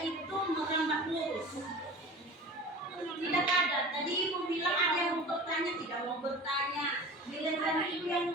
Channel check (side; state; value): both; normal; correlation 0.38